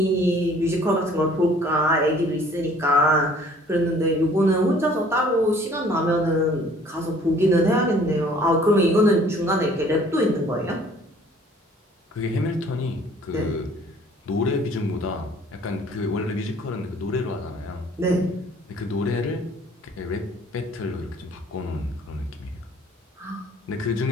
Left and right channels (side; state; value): both; normal; correlation 0.55